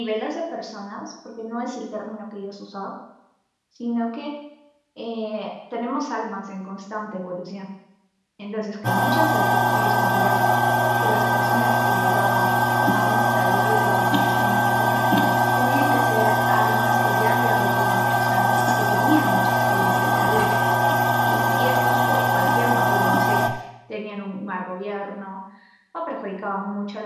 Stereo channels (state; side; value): identical; both; correlation 1.00